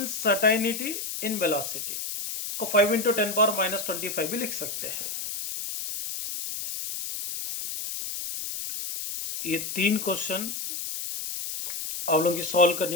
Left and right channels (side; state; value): left; noise; hiss, 5 dB below the sound